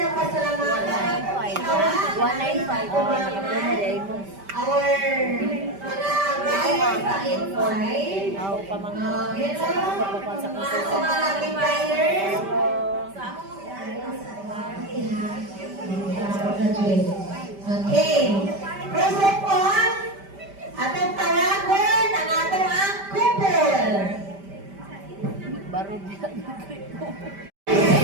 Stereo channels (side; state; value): left; late; 5.1 ms